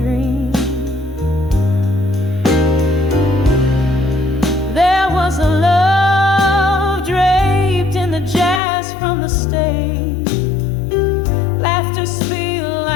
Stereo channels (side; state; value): right; drops out; at 8.6 s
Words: There was a love draped in the jazz from the stage. Laughter spilled